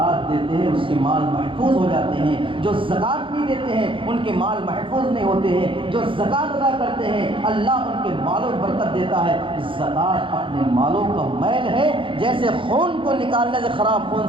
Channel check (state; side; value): late; left; 0.25 ms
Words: دیتے ہیں اس کے مال محفوظ ہو جاتے ہیں، جو زکوٰۃ نہیں دیتے ہیں ان کے مال محفوظ نہیں ہوتے ہیں، جو زکوٰۃ ادا کرتے ہیں اللہ ان کے مالوں میں برکت دیتا ہے۔ زکوٰۃ اپنے مالوں کا میل ہے، جیسے خون کو نکالنے سے خراب خون